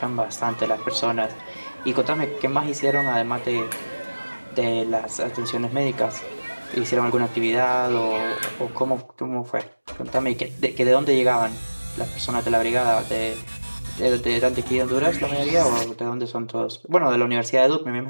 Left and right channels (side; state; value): both; inverted; correlation -1.00